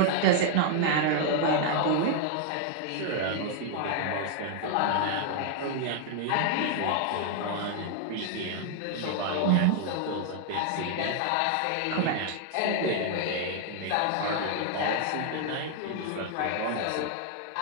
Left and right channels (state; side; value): different; both; correlation 0.00